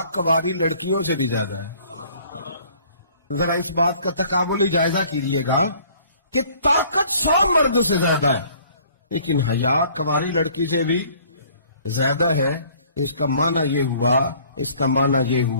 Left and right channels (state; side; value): inverted; both; correlation -0.56